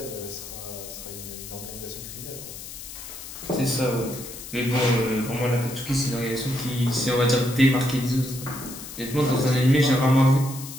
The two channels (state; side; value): noise; left; hiss, 12 dB below the sound